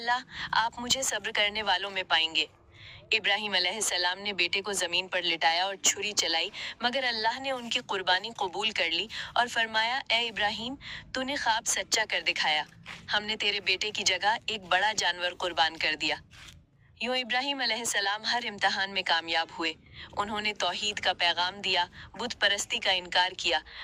आप मुझे सब्र करने वालों में पाएंगे। इब्राहिम अलैहिस्सलाम ने बेटे को जमीन पर लिटाया और छुरी चलाई, मगर अल्लाह ने उनकी कुर्बानी कबूल कर ली और फरमाया, ए इब्राहिम, तूने ख्वाब सच्चा कर दिखाया, हमने तेरे बेटे की जगह एक बड़ा जानवर कुर्बान कर दिया। यूं इब्राहिम अलैहिस्सलाम हर इम्तिहान में कामयाब हुए। उन्होंने तौहीद का पैगाम दिया, बुत परस्ती का इनकार किया,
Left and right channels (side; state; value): both; identical; correlation 1.00